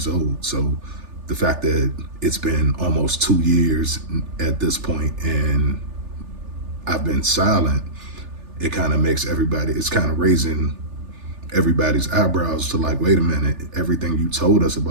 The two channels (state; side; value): late; left; 3.4 ms